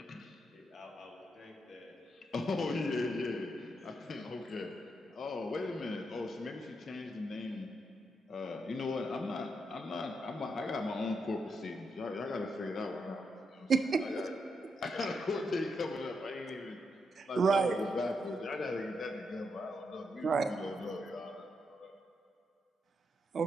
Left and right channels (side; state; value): both; normal; correlation 0.82